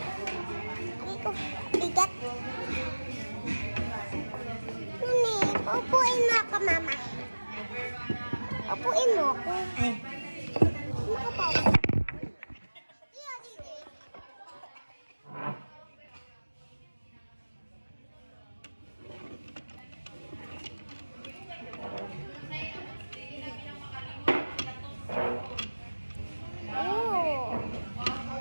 Hindi ko bigat. Mami, upuin mo ako, mama. Upuin mo ako. Eh. Makapaupo.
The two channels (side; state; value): both; inverted; correlation -1.00